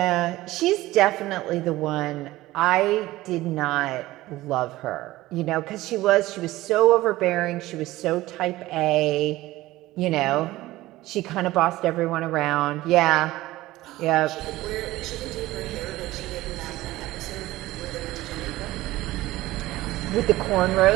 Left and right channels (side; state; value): left; quieter; 17.3 dB